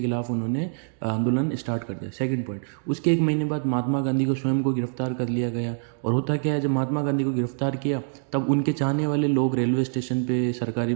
खिलाफ उन्होंने आंदोलन स्टार्ट कर दिया। सेकंड पॉइंट, उसके एक महीने बाद महात्मा गांधी को स्वयं को गिरफ्तार कर लिया गया। और होता क्या है, जब महात्मा गांधी को गिरफ्तार किया तब उनके चाहने वाले लोग रेलवे स्टेशन पे, सरकारी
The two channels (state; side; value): silent; left; digital silence